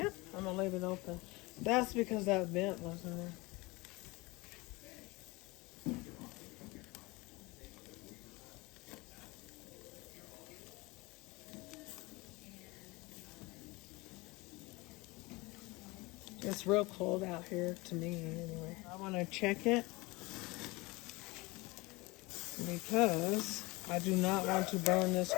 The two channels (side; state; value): right; quieter; 23.5 dB